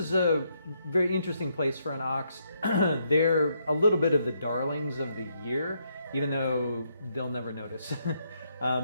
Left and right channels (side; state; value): both; inverted; correlation -0.76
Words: a very interesting place for an ox. They're a little bit of the darlings of the year, even though they'll never notice.